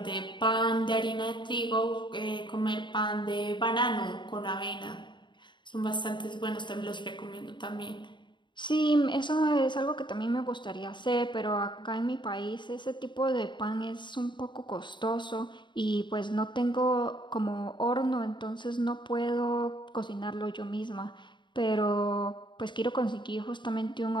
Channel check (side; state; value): right; late; 0.23 ms